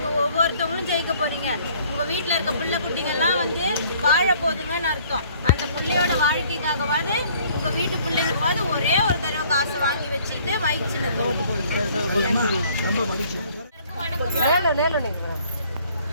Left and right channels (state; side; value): inverted; both; correlation -0.58